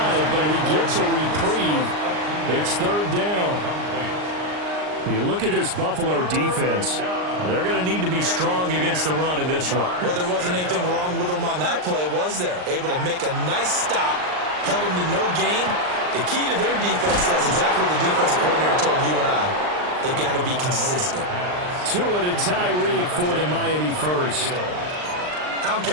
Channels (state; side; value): late; left; 39 ms